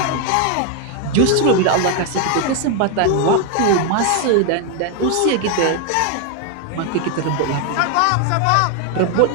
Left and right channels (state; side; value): different; both; correlation 0.01